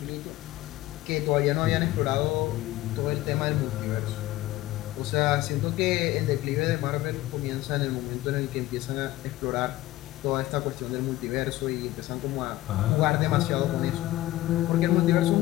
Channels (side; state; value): right; quieter; 16.3 dB